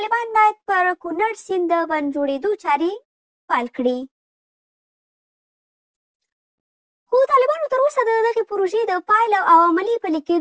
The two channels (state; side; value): identical; both; correlation 1.00